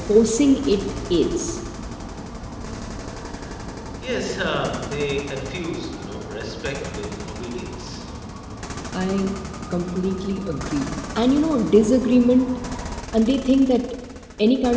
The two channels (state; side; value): identical; both; correlation 1.00